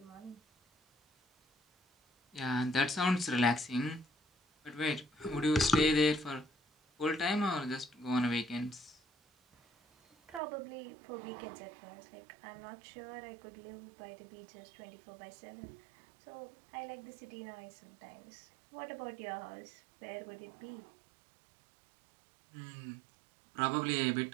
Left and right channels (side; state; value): left; drops out; at 10.4 s